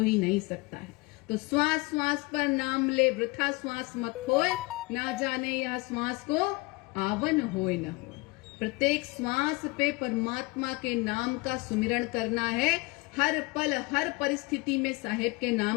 ही नहीं सकता है। तो श्वास श्वास पर नाम ले, वृथा श्वास मत होए, ना जाने यह श्वास को आवन होए न हो। प्रत्येक श्वास पे परमात्मा के नाम का सुमिरन करना है, हर पल, हर परिस्थिति में साहेब के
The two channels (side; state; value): right; quieter; 25.2 dB